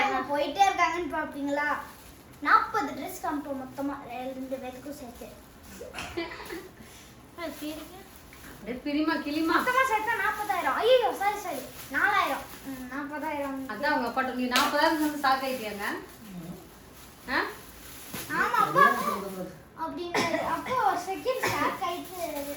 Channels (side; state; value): both; identical; correlation 1.00